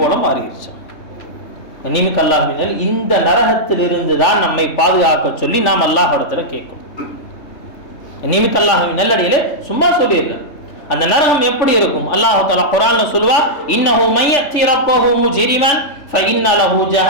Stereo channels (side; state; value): right; late; 3.4 ms